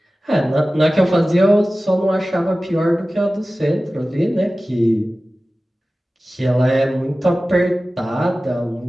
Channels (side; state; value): both; normal; correlation 0.96